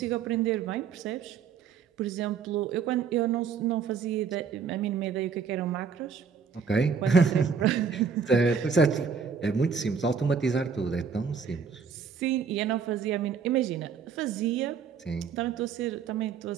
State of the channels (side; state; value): left; quieter; 6.2 dB